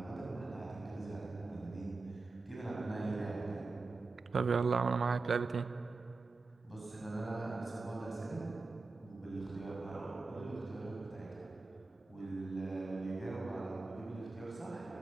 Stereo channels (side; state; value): left; quieter; 3.7 dB